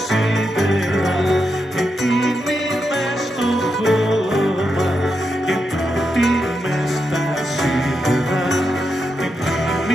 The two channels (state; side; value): normal; both; correlation 0.85